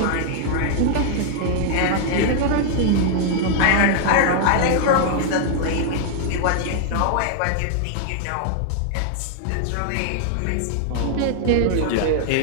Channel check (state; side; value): different; both; correlation 0.00